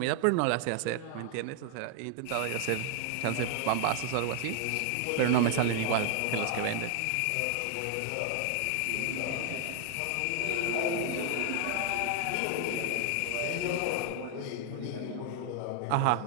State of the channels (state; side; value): different; both; correlation 0.00